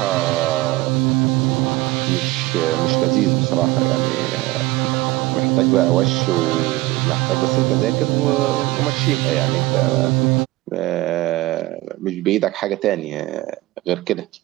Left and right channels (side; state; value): left; quieter; 19.1 dB